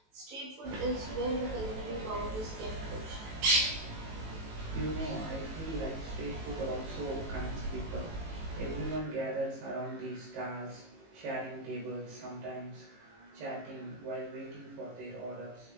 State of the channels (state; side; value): late; left; 18 ms